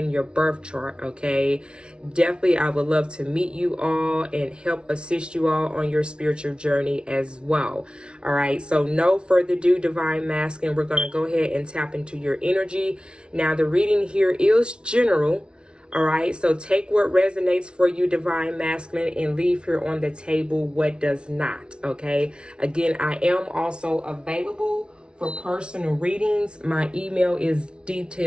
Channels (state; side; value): late; left; 0.057 ms